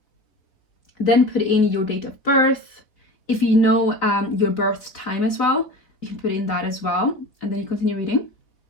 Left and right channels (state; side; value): late; right; 4.0 ms